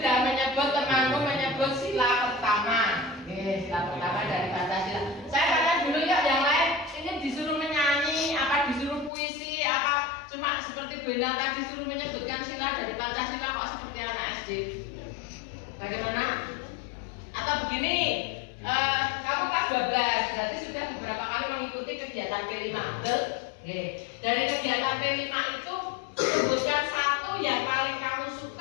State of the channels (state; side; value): drops out; right; at 9.1 s